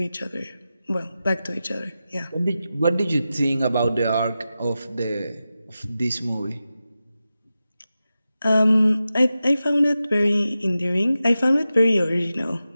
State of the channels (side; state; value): both; inverted; correlation -0.93